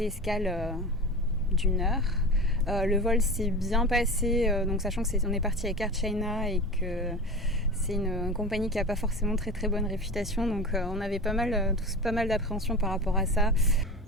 escale d'1 heure. Le vol s'est bien passé, donc sachant que on est parti avec Air China et que c'est une compagnie qui n'a pas forcément très très bonne réputation, donc on avait tous pas mal d'appréhension par rapport à ça.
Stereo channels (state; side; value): normal; both; correlation 0.31